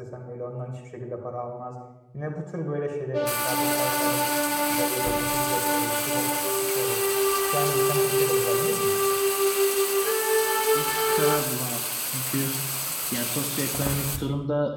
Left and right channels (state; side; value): identical; both; correlation 1.00